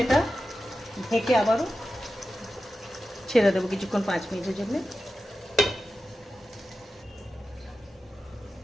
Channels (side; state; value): both; normal; correlation 0.92